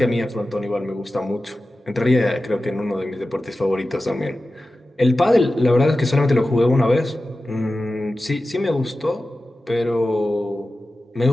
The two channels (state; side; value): normal; both; correlation 0.94